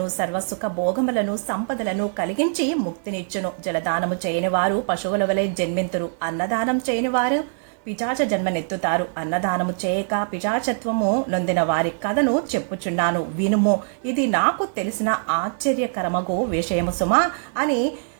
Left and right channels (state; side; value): silent; left; 59 dB below the other